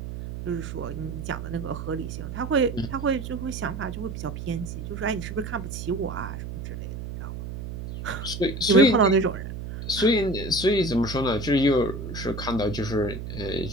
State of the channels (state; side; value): noise; right; hum, 7 dB below the sound